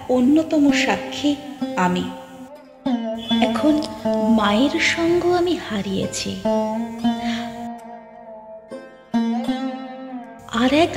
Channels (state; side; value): identical; both; correlation 1.00